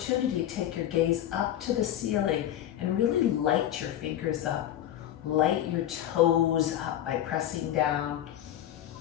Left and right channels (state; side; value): quieter; right; 11.8 dB